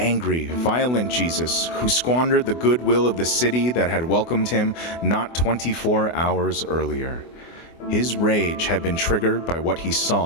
violent Jesus who squandered the goodwill of the city that had welcomed him not 24 hours earlier. His rage had been triggered by what he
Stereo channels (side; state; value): right; late; 24 ms